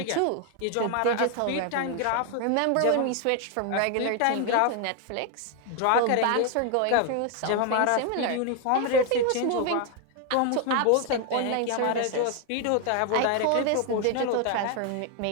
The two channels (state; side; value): different; both; correlation 0.01